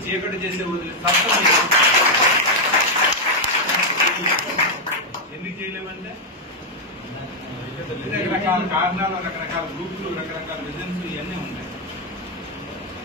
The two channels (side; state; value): both; normal; correlation 0.00